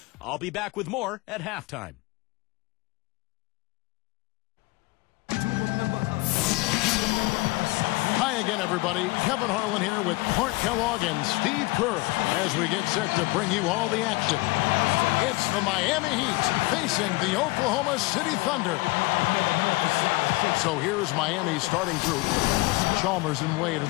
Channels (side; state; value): right; quieter; 22.7 dB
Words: I'll be back with more at halftime. Hi again, everybody. Kevin Harlan here with Clark Kellogg and Steve Kerr as we get set to bring you all the action. It's the Miami Heat facing the Oklahoma City Thunder. So here's Miami's starting group. Chalmers and Wade are